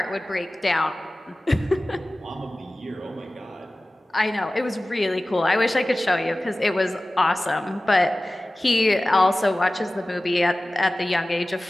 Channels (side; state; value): both; normal; correlation 0.97